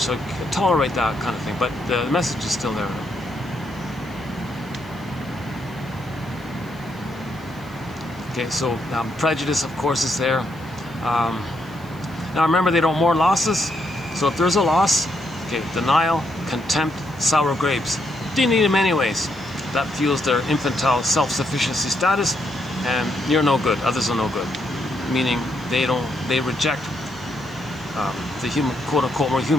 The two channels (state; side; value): noise; left; hiss, 28 dB below the sound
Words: so tolerate that kind of thing. But the message is still there. Okay, so prejudice, of course, is there. Now remember, they don't mourn losses. So if there's a loss, okay, denial, contempt, sour grapes. They need them anyways. That fuels their infantile self-sufficiency status, and you're no good. Others are no good. Meaning they reject the human, quote-unquote, more